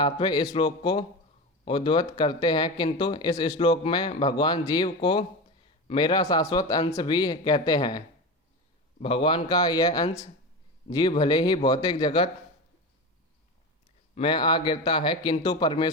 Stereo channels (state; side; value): normal; both; correlation 0.24